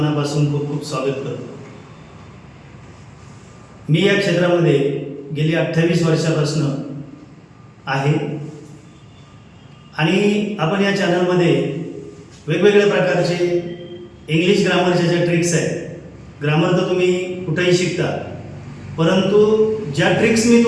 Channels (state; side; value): identical; both; correlation 1.00